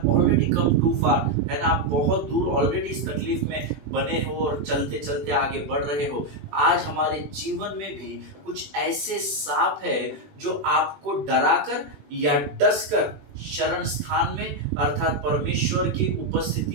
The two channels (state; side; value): late; left; 20 ms